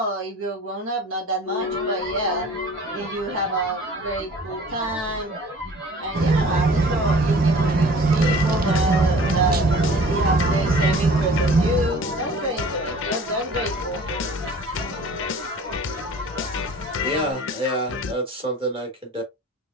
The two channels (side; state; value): both; normal; correlation 0.46